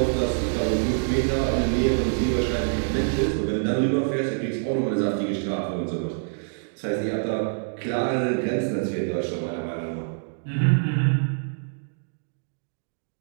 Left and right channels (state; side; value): silent; left; digital silence